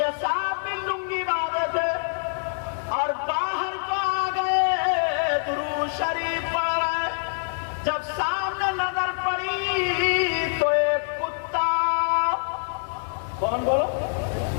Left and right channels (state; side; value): silent; right; digital silence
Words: صاحب بھی لنگی باندھے تھے اور باہر کو آ گئے، درود شریف پڑھ رہے، جب سامنے نظر پڑی تو ایک کتا، کون بولو؟